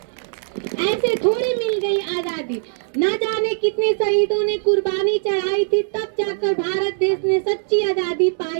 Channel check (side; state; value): left; silent; 65 dB below the other